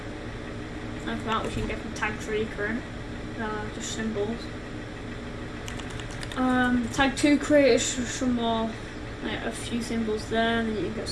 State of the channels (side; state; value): both; identical; correlation 1.00